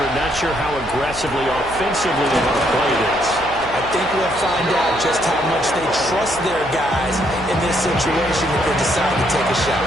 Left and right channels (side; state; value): right; noise; hum, 17 dB below the sound